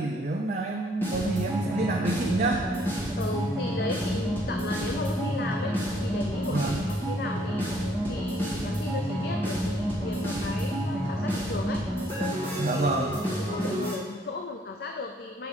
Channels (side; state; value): both; normal; correlation 0.65